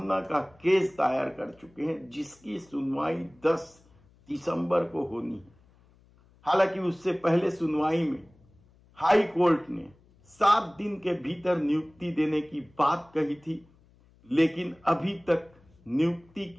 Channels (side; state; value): left; noise; hum, 30 dB below the sound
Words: का केस दायर कर चुके हैं, जिसकी सुनवाई 10 दिसंबर को होनी है। हालांकि उससे पहले सुनवाई में हाई कोर्ट ने 7 दिन के भीतर नियुक्ति देने की बात कही थी, लेकिन अभी तक नियुक्ति